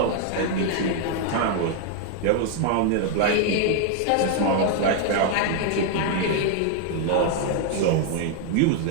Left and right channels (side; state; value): both; different; correlation 0.00